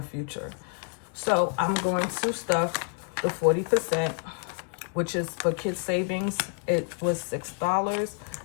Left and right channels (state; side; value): quieter; right; 38.2 dB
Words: future. So I'm going to stuff the 40%, which is for kids savings. It was $6.